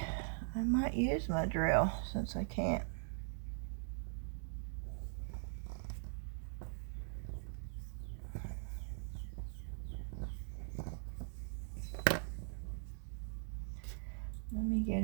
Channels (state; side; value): silent; left; digital silence